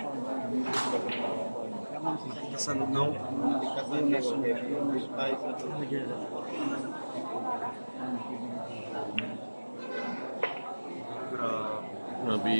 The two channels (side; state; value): both; inverted; correlation -1.00